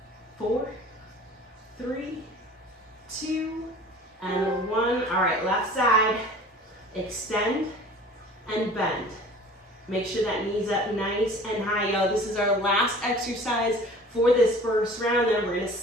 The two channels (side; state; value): both; normal; correlation 0.44